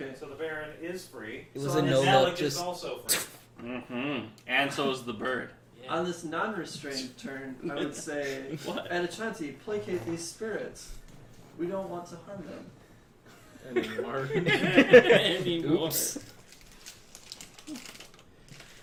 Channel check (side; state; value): both; identical; correlation 1.00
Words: So the Baron is free. It was So a on no his look, Malik is just also free. Mm-hmm. And so is the bird. On this non-restrained turn, I would say, What? Edachanti, placate these spirits. We don't want to harm them. Anymore. Anymore. Oops.